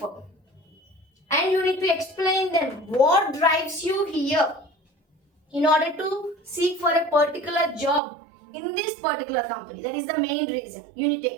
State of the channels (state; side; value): drops out; left; at 8.0 s